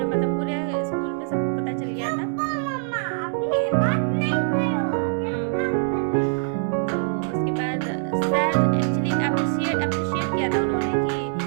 पूरे स्कूल में सबको पता चल गया था। तो उसके बाद सर एक्चुअली अप्रिशिएट किया था उन्होंने कि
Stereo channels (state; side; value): silent; left; 63 dB below the other